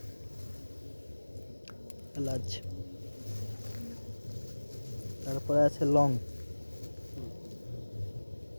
এলাচ, তারপরে আছে লং।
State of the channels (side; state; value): both; inverted; correlation -1.00